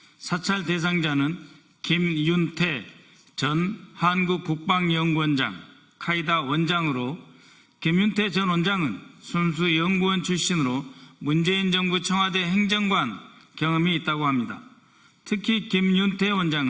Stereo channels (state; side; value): identical; both; correlation 1.00